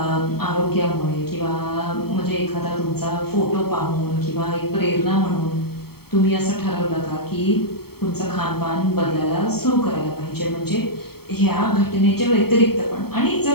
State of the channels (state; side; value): late; right; 0.95 ms